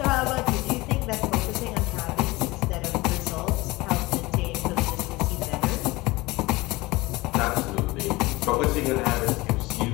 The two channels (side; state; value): right; quieter; 21.3 dB